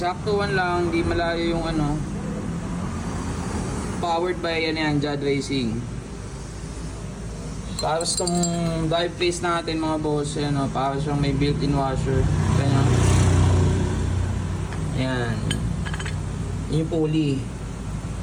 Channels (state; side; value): identical; both; correlation 1.00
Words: lang, di malayo yung powered by Jad Racing. Tapos itong drive face natin, mga boss, ayan, para siyang may built-in washer. Ayan. Ayan. Yung pulley.